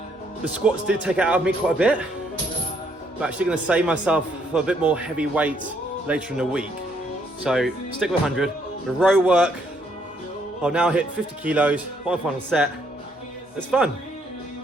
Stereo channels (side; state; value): both; normal; correlation 0.70